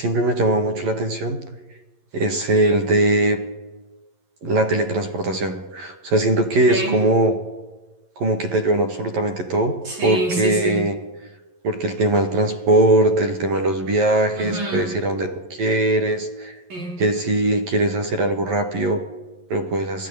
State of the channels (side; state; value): left; late; 11 ms